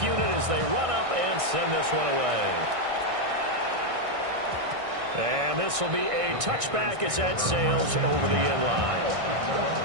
unit as they run up and send this one away. And this will be a touchback as that sails over the end line.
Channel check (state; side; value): late; left; 1.6 ms